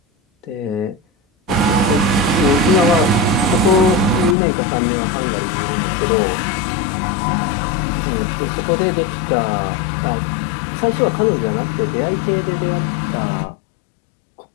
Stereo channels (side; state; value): right; drops out; at 4.4 s